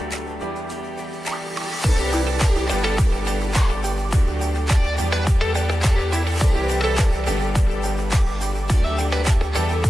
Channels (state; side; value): normal; both; correlation 0.93